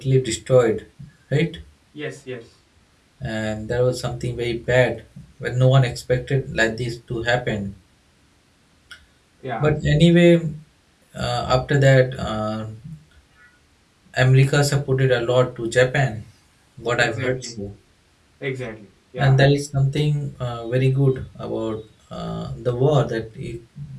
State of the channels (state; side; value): identical; both; correlation 1.00